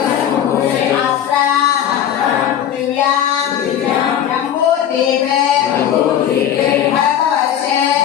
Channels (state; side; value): quieter; right; 10.0 dB